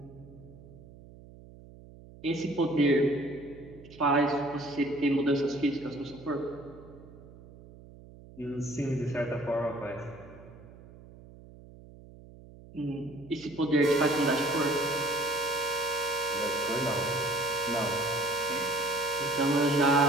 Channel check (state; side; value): noise; right; hum, 20 dB below the sound